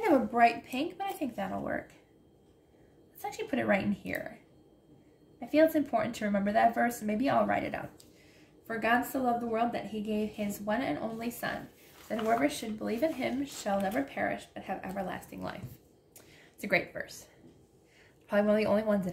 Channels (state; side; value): identical; both; correlation 1.00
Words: of a bright pink, but I think that'll work. Let's actually put it right in here. I feel it's important to remember that verse, and maybe I'll write it out. For God so loved the world that he gave his one and only Son, that whoever should believe in him shall never perish, but have everlasting life. It's a great verse. Probably one of the only ones